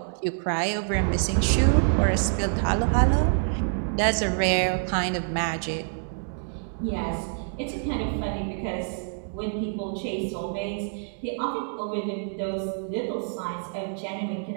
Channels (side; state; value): left; silent; digital silence